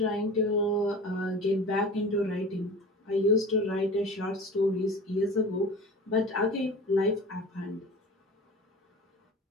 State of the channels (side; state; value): both; normal; correlation 0.37